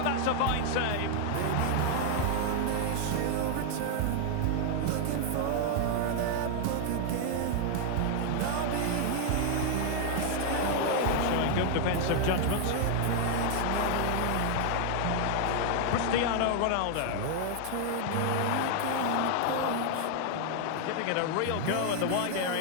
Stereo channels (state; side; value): different; both; correlation 0.00